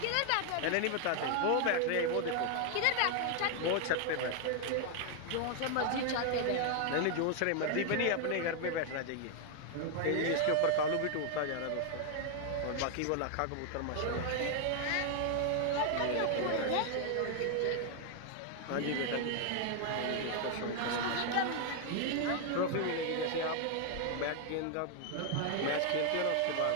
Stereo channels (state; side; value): different; both; correlation 0.00